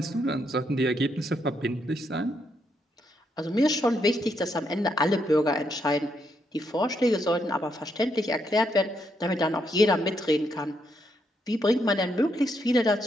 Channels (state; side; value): normal; both; correlation 0.77